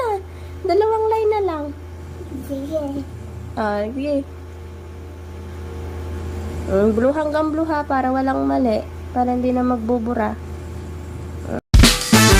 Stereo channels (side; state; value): both; identical; correlation 1.00